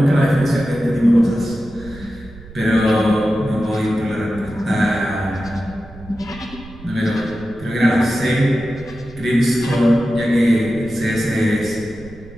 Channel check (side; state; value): right; noise; rumble, 18 dB below the sound